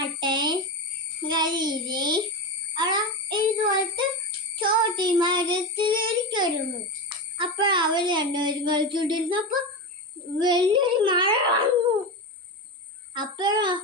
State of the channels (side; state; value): both; normal; correlation 0.19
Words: കരിയില് അവിടെ ഇതുപോലത്തെ ചോട്ടി മരത്തിലിരിക്കുന്നു. അപ്പോൾ അവർ രണ്ടുപേരും കളിച്ചുകൊണ്ടിരുന്നപ്പോൾ വലിയൊരു മഴ വന്നു. അപ്പോഴോ